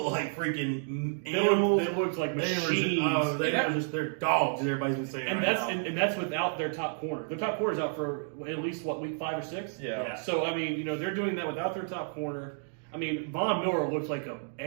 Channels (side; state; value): left; silent; digital silence